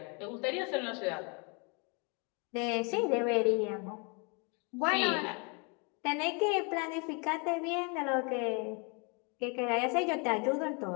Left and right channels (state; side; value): quieter; right; 33.3 dB